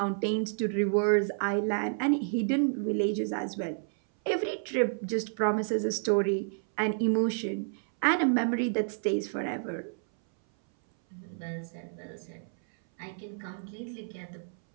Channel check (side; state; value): left; silent; 58 dB below the other